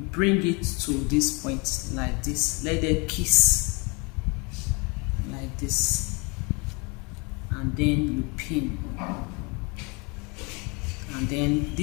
it to this point like this. Let them kiss like this, and then you pin. And then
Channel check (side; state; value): right; quieter; 30.1 dB